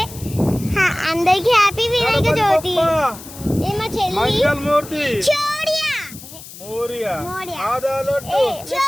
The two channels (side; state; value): left; noise; hiss, 16 dB below the sound